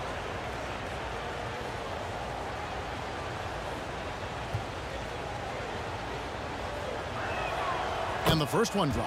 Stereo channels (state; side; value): identical; both; correlation 1.00